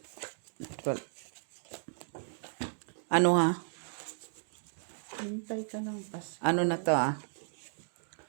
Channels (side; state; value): left; silent; digital silence